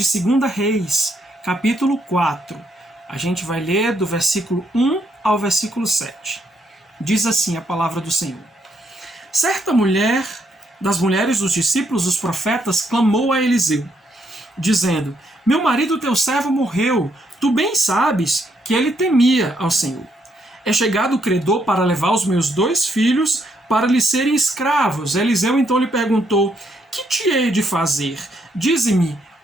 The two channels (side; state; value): both; normal; correlation 0.74